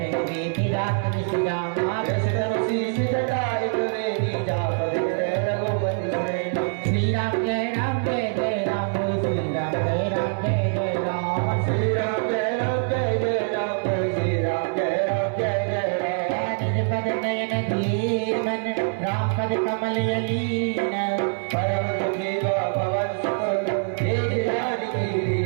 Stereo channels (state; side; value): silent; left; 62 dB below the other